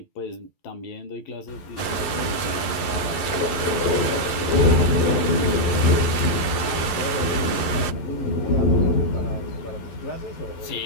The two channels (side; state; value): right; late; 11 ms